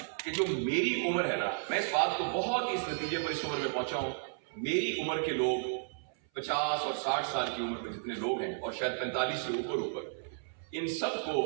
کہ جو میری عمر ہے نا، میں اس بات کو بہت اس نتیجے پر اس عمر میں پہنچا ہوں، میری عمر کے لوگ 50 اور 60 سال کی عمر میں جتنے لوگ ہیں اور شاید 45 سے اوپر ان سب کو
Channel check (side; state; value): left; silent; 56 dB below the other